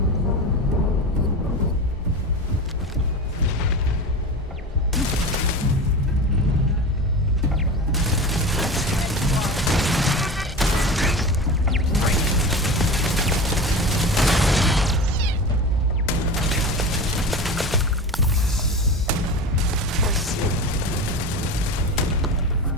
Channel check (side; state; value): both; normal; correlation 0.29